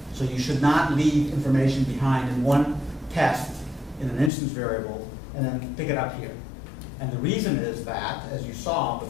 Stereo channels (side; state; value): right; drops out; at 4.3 s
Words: So you should not leave information behind in one test in an instance variable and then pick it up here. And the reason is that, as you saw